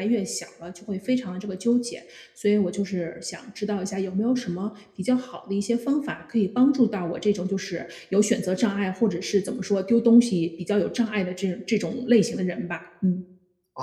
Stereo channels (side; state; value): both; identical; correlation 1.00